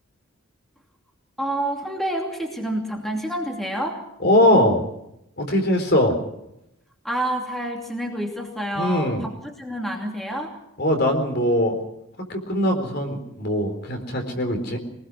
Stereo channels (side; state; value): both; normal; correlation 0.20